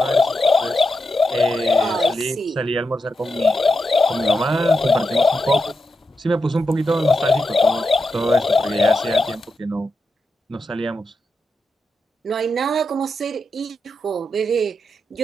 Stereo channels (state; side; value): normal; both; correlation 0.87